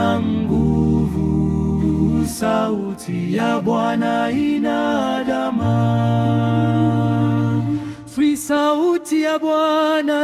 nguvu, sauti ya Bwana ina dama. Sauti ya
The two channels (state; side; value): identical; both; correlation 1.00